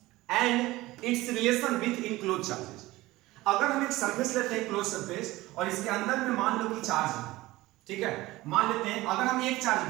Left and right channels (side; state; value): left; quieter; 18.6 dB